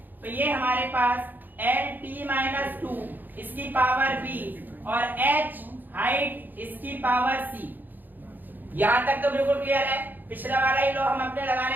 तो ये हमारे पास LT-2 इसकी पावर b और h हाइट इसकी पावर c। यहां तक तो बिल्कुल क्लियर है। पिछला वाला ही लो हम अपने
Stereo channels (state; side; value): late; left; 0.088 ms